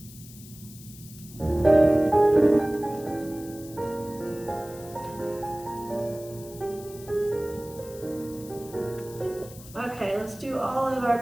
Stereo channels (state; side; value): noise; left; hiss, 18 dB below the sound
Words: Okay, let's do all of our